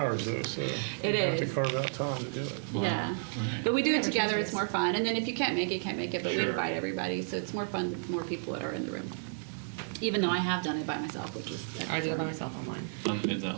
though, so. It you have to is. carve out time to do it. Yeah, but we do it Whatever together, Tuesdays. it's more fun. And then if you can't make it, but we Sure. invite everybody, so it's more fun with more people that are in the room. even though I have done it by myself, which was. I did it by myself online. Is the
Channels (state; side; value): silent; left; digital silence